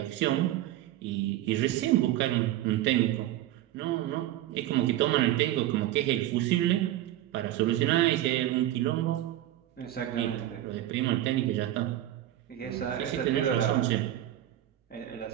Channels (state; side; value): quieter; left; 13.6 dB